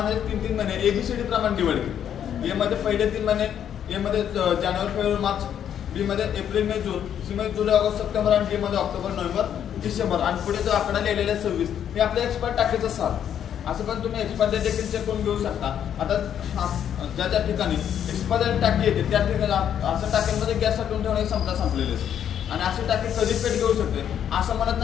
3 महिने ABCD प्रमाणे डिवाइड केले. ए मध्ये पहिले 3 महिने, ए मध्ये जानेवारी, फेब्रुवारी, मार्च, बी मध्ये एप्रिल, मे, जून, सी मध्ये जुलै, ऑगस्ट, सप्टेंबर आणि डी मध्ये ऑक्टोबर, नोव्हेंबर, डिसेंबर आणि पुढे जो आकडा लिहिलेला 26 हे आपल्या एक्सपायर टाकीचं साल. असं पण तुम्ही एक्सपायर डेट देखील चेक करून घेऊ शकता. आता ज्या ज्या ठिकाणी एक्सपायर टाकी येते त्या ठिकाणी असं टाक्यांमध्ये गॅस साठवून ठेवण्याची क्षमता संपलेली असते आणि अशी टाकी कधी पेट घेऊ शकते. असं म्हणत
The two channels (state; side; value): quieter; right; 9.4 dB